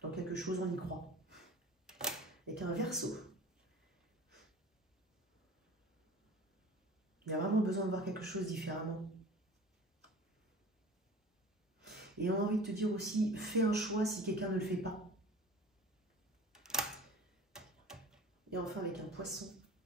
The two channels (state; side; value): normal; both; correlation 0.41